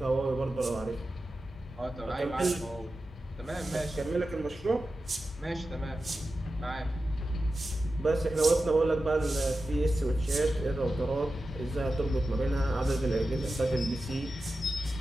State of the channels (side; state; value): both; normal; correlation 0.92